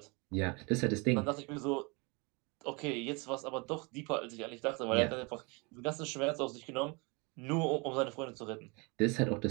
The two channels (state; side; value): quieter; left; 29.3 dB